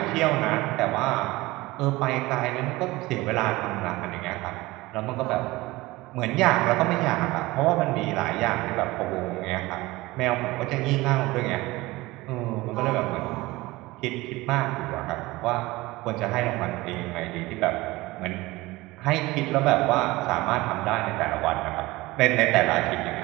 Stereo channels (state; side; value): quieter; left; 20.3 dB